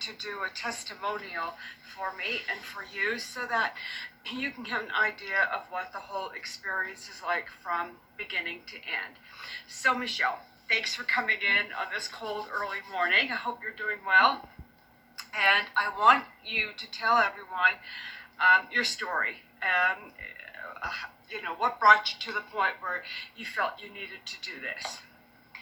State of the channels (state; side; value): identical; both; correlation 1.00